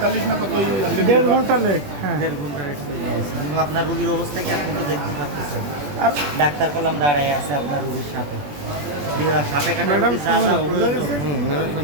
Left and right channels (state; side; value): late; left; 21 ms